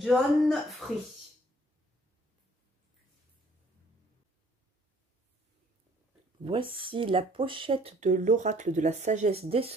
Voici la pochette de l'oracle de la sagesse des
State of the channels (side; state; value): both; normal; correlation 0.59